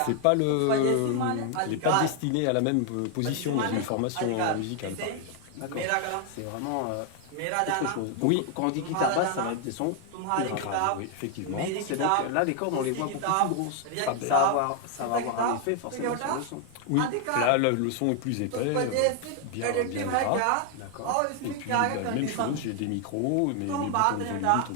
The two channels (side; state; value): both; different; correlation 0.00